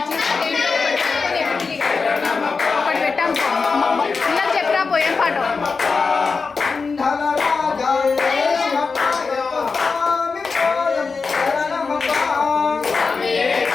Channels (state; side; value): quieter; right; 4.6 dB